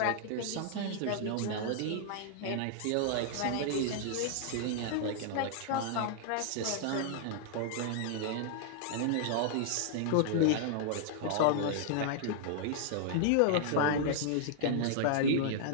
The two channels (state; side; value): different; both; correlation -0.01